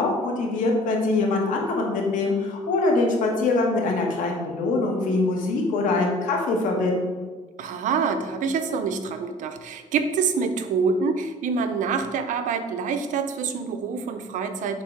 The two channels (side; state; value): both; normal; correlation 0.45